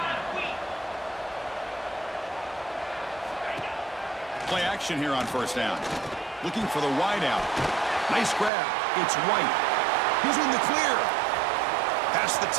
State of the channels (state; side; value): drops out; left; at 8.5 s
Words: Play action here on first down. Looking for the wide out. Nice grab. It's White. He's in the clear. Past the